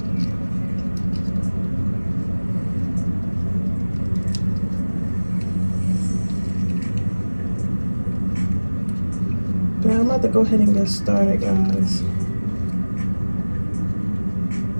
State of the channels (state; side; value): inverted; both; correlation -1.00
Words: But I'm about to go ahead and get started, guys.